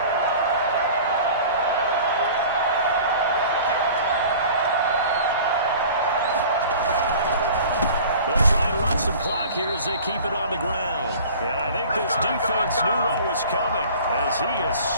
They'll try and run some clock here as they keep it on the ground. And I think this defense knew what was coming as he is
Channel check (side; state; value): both; inverted; correlation -0.43